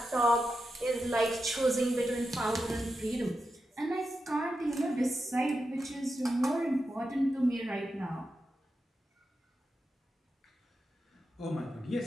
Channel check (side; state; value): both; normal; correlation 0.89